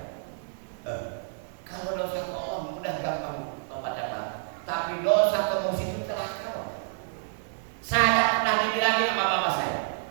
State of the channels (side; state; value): left; silent; digital silence